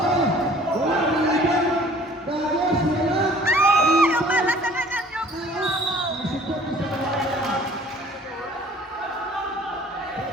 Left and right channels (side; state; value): both; normal; correlation 0.52